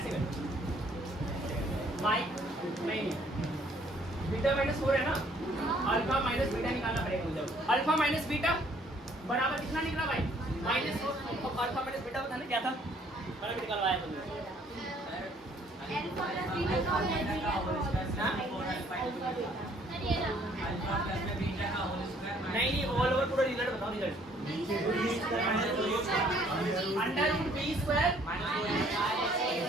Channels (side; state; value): both; normal; correlation 0.62